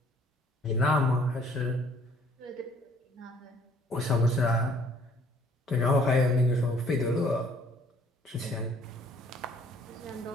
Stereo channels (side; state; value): both; normal; correlation 0.59